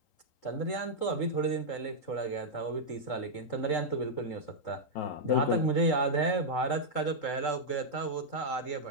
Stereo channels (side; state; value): right; late; 3.8 ms